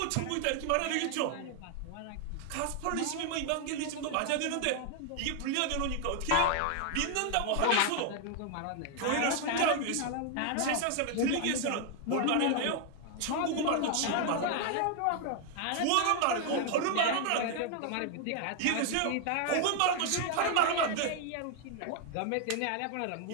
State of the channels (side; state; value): both; different; correlation 0.00